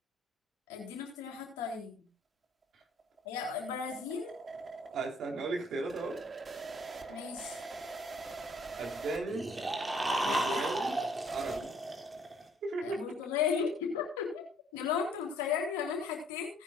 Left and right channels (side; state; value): both; normal; correlation 0.61